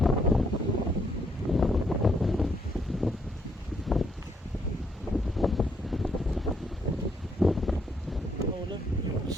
Oh look, little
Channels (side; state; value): both; normal; correlation 0.72